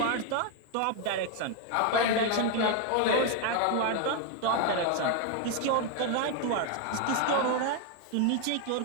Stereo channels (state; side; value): different; both; correlation 0.01